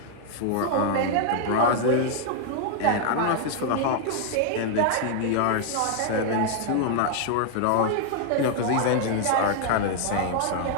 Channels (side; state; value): both; different; correlation 0.00